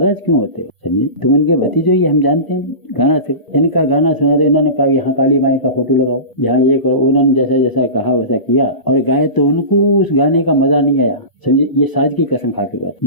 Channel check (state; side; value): late; right; 1.0 ms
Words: क्यों होते हो? समझे, तुम उनके भतीजे ही, हम जानते हैं गाना से। इनका गाना सुना तो इन्होंने कहा यहाँ काली माई का फोटो लगाओ, यहाँ ये करो। उन्होंने जैसा जैसा कहा वैसा किया और गाए, तो उनको उस गाने का मजा नहीं आया। समझे, ये साज की कसम खा के गाते,